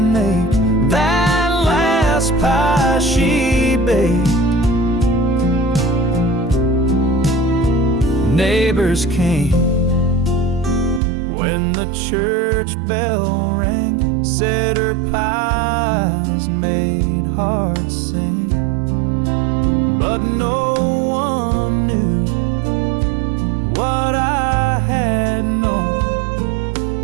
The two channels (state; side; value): drops out; left; at 11.0 s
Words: make that last pie she baked. Neighbors came when the church bell rang, said her pies made hearts sing. But no one knew what I had known,